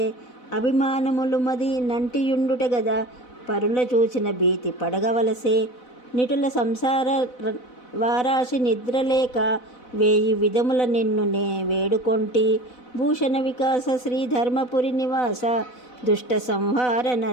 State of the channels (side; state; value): right; late; 4.0 ms